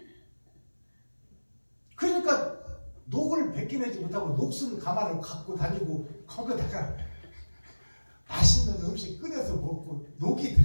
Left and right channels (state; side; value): inverted; both; correlation -1.00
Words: 그러니까 녹을 벗겨내지 못하고 녹슨 가마를 갖고 다니고 거기다가 맛있는 음식 끓여서 먹고 녹이